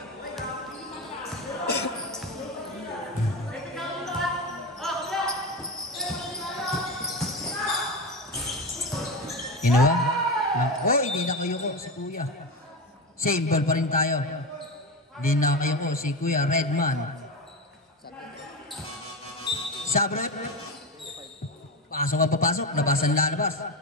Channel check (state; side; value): normal; both; correlation 0.19